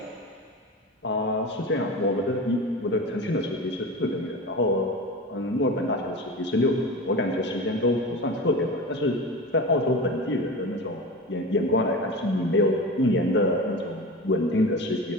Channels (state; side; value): normal; both; correlation 0.29